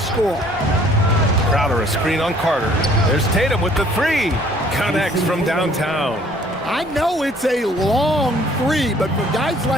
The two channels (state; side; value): normal; both; correlation 0.58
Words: Crowder a screen on Carter. There's Tatum with the 3. Connects from downtown. I know it's a long 3, but for guys